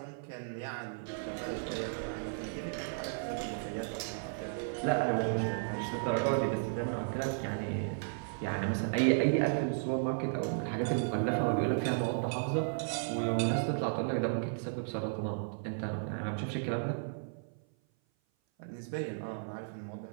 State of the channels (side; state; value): left; silent; 55 dB below the other